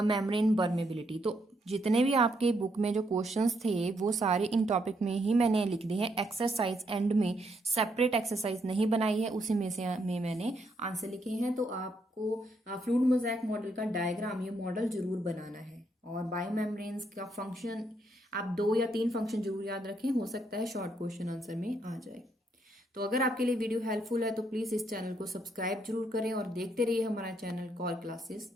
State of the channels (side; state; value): both; normal; correlation 0.75